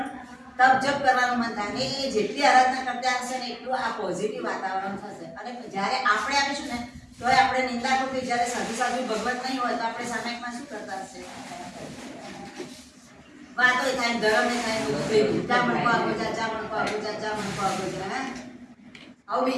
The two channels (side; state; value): both; identical; correlation 1.00